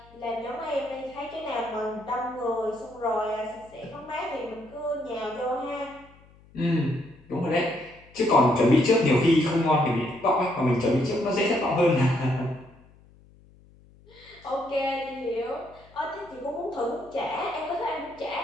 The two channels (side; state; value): left; noise; hum, 26 dB below the sound